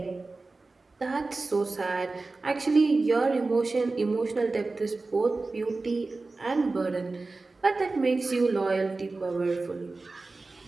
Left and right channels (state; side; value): quieter; left; 3.5 dB